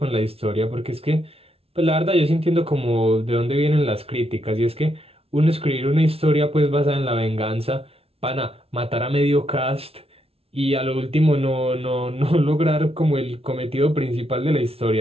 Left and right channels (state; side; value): late; left; 0.28 ms